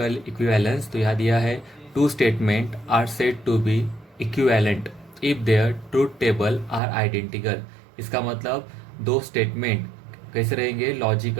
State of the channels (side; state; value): left; drops out; at 6.8 s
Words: इक्विवेलेंस। तो यहाँ दिया है two statement are said to be equivalent if their truth table are identical. इसका मतलब दो स्टेटमेंट कैसे रहेंगे,